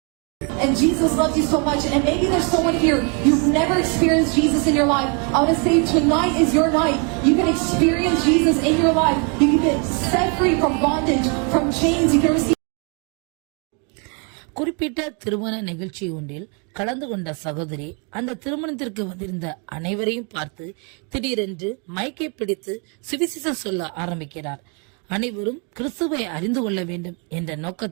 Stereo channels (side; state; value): left; quieter; 36.2 dB